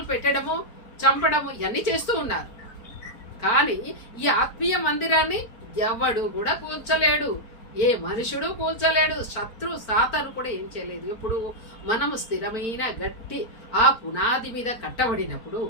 పెట్టడము, చంపడము ఇవన్నీ చేస్తూ ఉన్నారు. కానీ ఈ ఆత్మీయ మందిరాన్ని ఎవడు కూడా కూల్చలేడు, ఏ మనుషుడు కూల్చలేడు. శత్రు సాతాను కూడా ఏం చేయలేదు. ఇప్పుడు మనము స్థిరమైన గట్టి ఆ పునాది మీద కట్టబడినప్పుడు,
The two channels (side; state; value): right; late; 4.4 ms